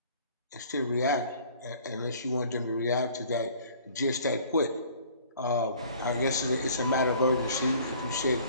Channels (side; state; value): both; inverted; correlation -0.53